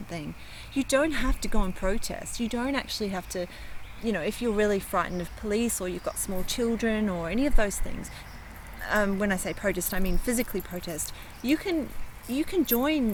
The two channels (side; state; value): both; identical; correlation 1.00